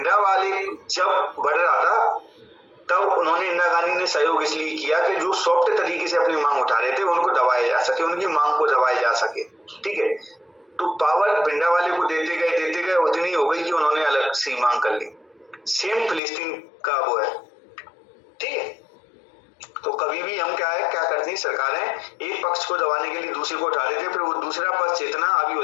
वाले जब बढ़ रहा था तब उन्होंने इंदिरा गांधी ने सहयोग इसलिए किया कि जो सॉफ्ट तरीके से अपनी मांग उठा रहे थे उनको दबाया जा सके, उनकी मांग को दबाया जा सके। ठीक है, तो पावर भिंडरा वाले को देते गए उतनी हो गई कि उन्होंने अलग सी मांग कर ली। सेम फिलिस्तीन का वो है। ठीक है, तो कभी भी हम क्या करती हैं सरकारें, एक पक्ष को दबाने के लिए दूसरे को उठा देते हैं, फिर वो दूसरा पक्ष इतना हावी हो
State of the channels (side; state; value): right; drops out; at 16.2 s